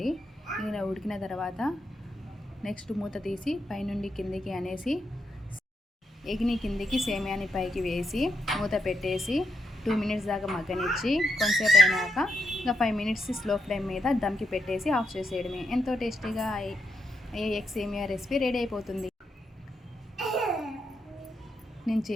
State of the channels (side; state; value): both; normal; correlation 0.81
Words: ఇలా ఉడికిన తర్వాత నెక్స్ట్ మూత తీసి పైనుండి కిందికి అనేసి ఎగ్ని కిందికి సేమియాని పైకి వేసి మూత పెట్టేసి 2 మినిట్స్ దాకా మగ్గనిచ్చి కొంచెంసేపు అయినాక ఇంకా 5 మినిట్స్ స్లో ఫ్లేమ్ మీద దమ్కి పెట్టేసి ఆఫ్ చేసేయడమే. ఎంతో టేస్టీగా ఎగ్ సేమియా రెసిపీ రెడీ అయిపోతుంది. నేను